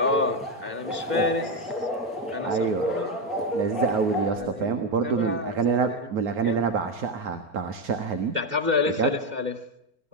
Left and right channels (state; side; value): late; left; 4.4 ms